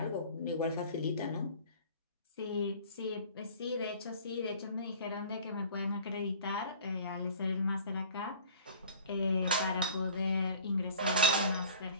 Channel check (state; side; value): inverted; both; correlation -0.45